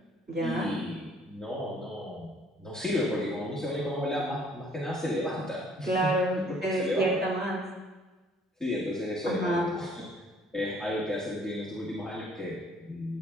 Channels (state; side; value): normal; both; correlation 0.59